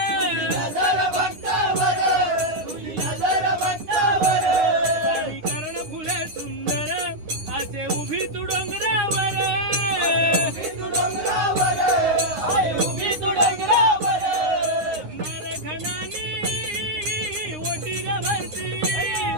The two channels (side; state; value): left; late; 9.6 ms